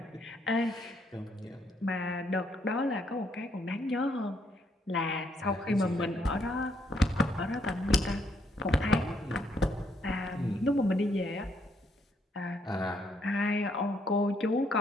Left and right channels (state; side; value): normal; both; correlation 0.72